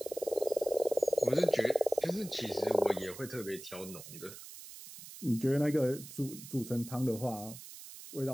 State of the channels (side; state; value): right; noise; hiss, 14 dB below the sound